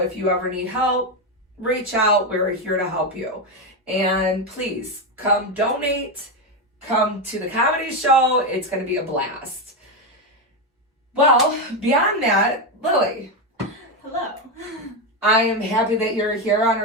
you ever need help, reach out. We're here to help you. And please come donate, come to the comedy show. It's going to be a blast. Well, beyond that, Lily. Hello. I am happy that you're here on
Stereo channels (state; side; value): normal; both; correlation 0.09